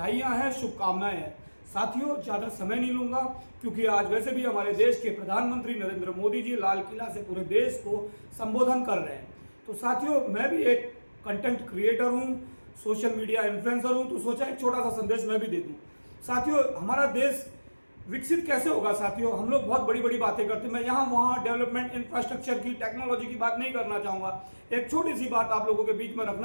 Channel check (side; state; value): both; inverted; correlation -1.00